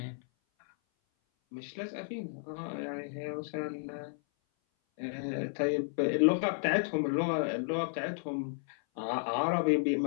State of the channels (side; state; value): right; silent; 56 dB below the other